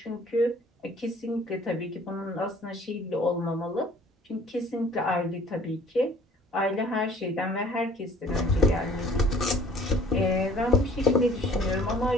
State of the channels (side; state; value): both; normal; correlation 0.54